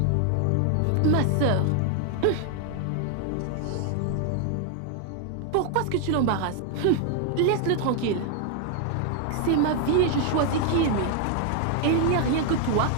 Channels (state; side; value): different; both; correlation 0.00